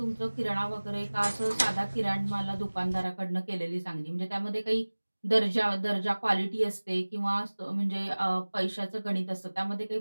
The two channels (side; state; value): both; inverted; correlation -1.00